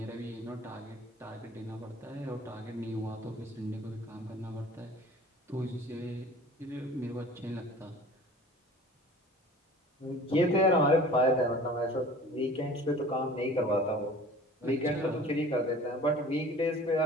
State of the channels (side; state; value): both; normal; correlation 0.44